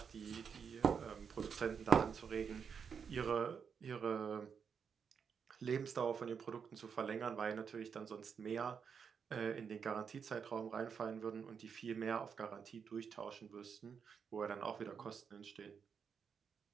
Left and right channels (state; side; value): quieter; left; 6.6 dB